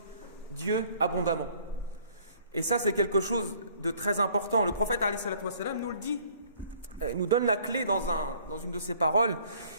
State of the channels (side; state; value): both; inverted; correlation -0.58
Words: Dieu abondamment. Et ça, c'est quelque chose de très important. Le prophète alayhi salatu wa sallam nous le dit. Il nous donne la clé dans une de ses paroles.